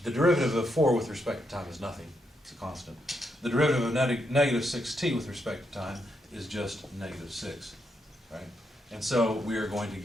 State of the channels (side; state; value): both; normal; correlation 0.80